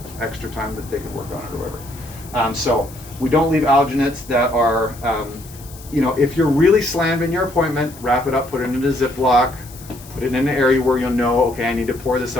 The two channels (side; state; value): left; noise; hiss, 19 dB below the sound